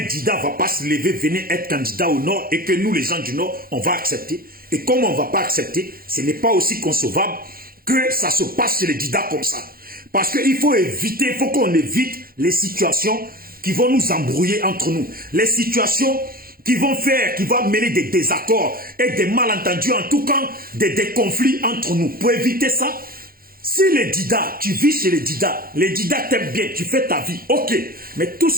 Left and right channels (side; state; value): left; late; 0.42 ms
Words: Dida ne va pas se lever, venir être candidat au Nord et que nous, les gens du Nord, on va accepter. Et comme on ne va pas accepter, ce n'est pas aussi concevable que ça se passe chez les Dida comme ça. Parce qu'il faut éviter, il faut qu'on évite les situations qui vont nous embrouiller entre nous. Les situations qui vont mener des désaccords et des malentendus, en tout cas des conflits entre nous. Pour éviter ça, si les Dida, tu vis chez les Dida t'aiment bien, tu fais ta vie, ok. Mais tout